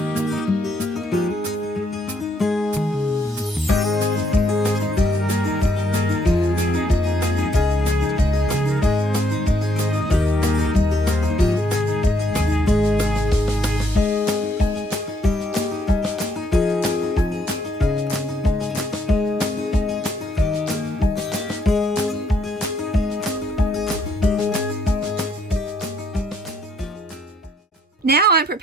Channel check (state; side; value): normal; both; correlation 0.71